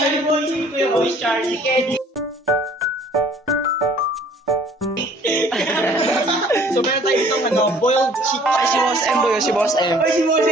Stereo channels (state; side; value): normal; both; correlation 0.55